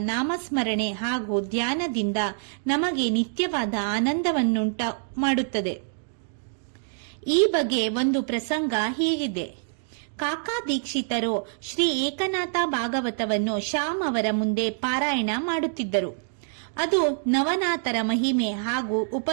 ನಾಮಸ್ಮರಣೆ ಹಾಗೂ ಧ್ಯಾನದಿಂದ ನಮಗೆ ನಿತ್ಯವಾದ ಆನಂದವನ್ನುಂಟ ಮಾಡುತ್ತದೆ. ಈ ಬಗ್ಗೆ ಒಂದು ಪ್ರಸಂಗ ಹೀಗಿದೆ. ಕಾಕಾ ದೀಕ್ಷಿತರು ಶ್ರೀ ಏಕನಾಥ ಭಾಗವತವನ್ನು ಶ್ಯಾಮ್ ಅವರ ಮುಂದೆ ಪಾರಾಯಣ ಮಾಡುತ್ತಿದ್ದರು. ಅದು ನವನಾಥರ ಮಹಿಮೆ ಹಾಗೂ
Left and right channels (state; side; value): silent; left; digital silence